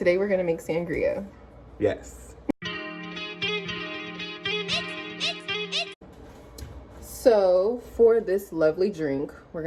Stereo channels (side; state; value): both; identical; correlation 1.00